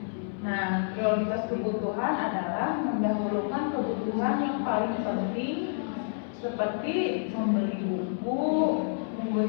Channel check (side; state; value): right; silent; 58 dB below the other